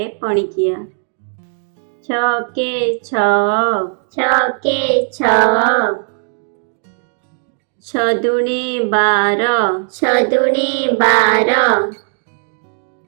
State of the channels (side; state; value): left; silent; digital silence